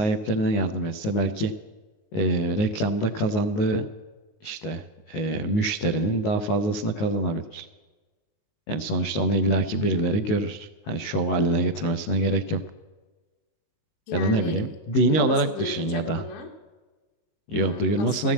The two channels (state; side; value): late; right; 19 ms